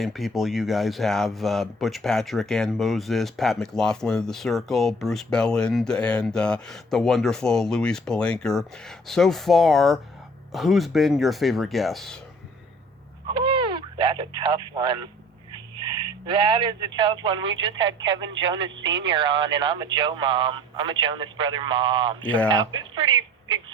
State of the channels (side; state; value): both; normal; correlation 0.50